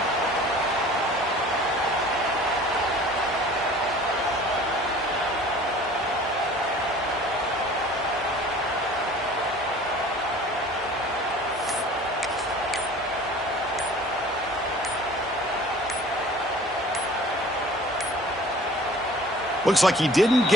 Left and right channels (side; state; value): both; normal; correlation 0.47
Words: Looks like he didn't